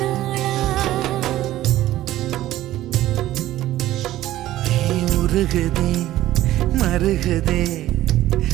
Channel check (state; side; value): quieter; left; 14.6 dB